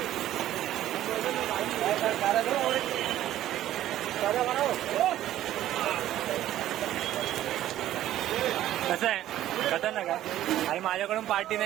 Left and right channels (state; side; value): quieter; left; 13.1 dB